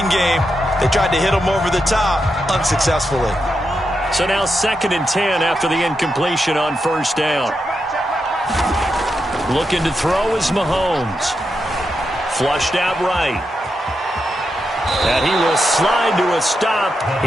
game. They tried to hit them over the top, unsuccessfully. So now 2nd and 10 after the incompletion on first down. Looking to throw is Mahomes. Flushed out right. And he will slide to a stop.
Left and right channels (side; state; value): both; normal; correlation 0.85